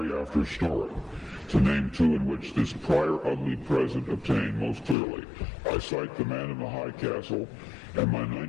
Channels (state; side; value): drops out; right; at 5.0 s